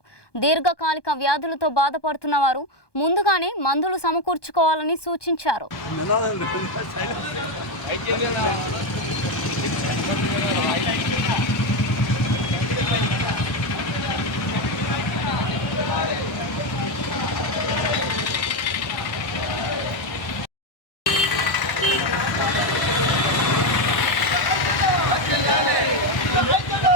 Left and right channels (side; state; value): right; late; 1.2 ms